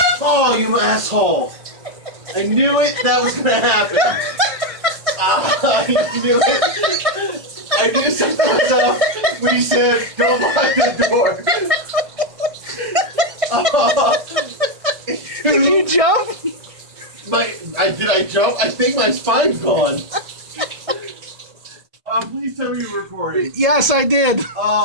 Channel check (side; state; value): left; late; 1.6 ms